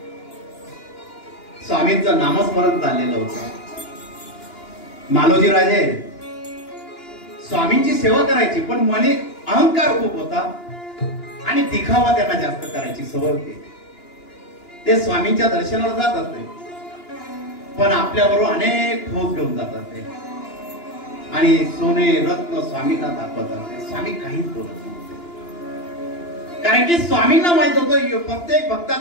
स्वामींचं नामस्मरण चाललेलं होतं। मालोजी राजे स्वामींची सेवा करायची पण मने अहंकार खूप होता आणि दिखावा त्यांना जास्त करायची सवय होती। ते स्वामींच्या दर्शनाला जात असते पण आपल्याबरोबर अनेक ठोस घेऊन जात असते आणि सोने रत्न स्वामींना दाखवत असते। स्वामी काहीच बोलत नव्हते, कारण की स्वामींना माहित होतं प्रत्येक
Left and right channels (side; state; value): right; late; 2.9 ms